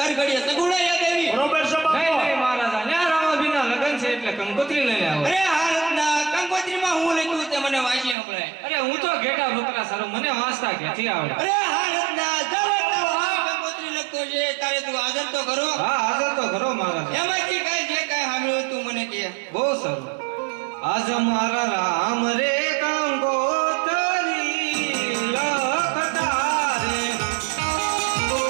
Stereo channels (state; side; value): drops out; left; at 8.2 s